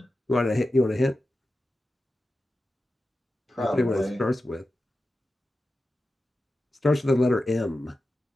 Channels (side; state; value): both; normal; correlation 0.92